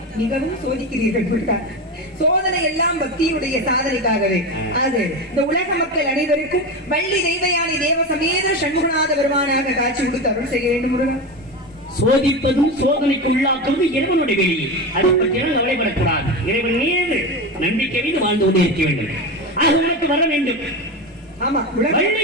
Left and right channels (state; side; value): normal; both; correlation 0.21